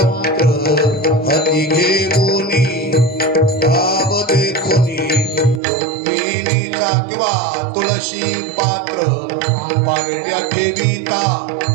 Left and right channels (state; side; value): drops out; left; at 5.6 s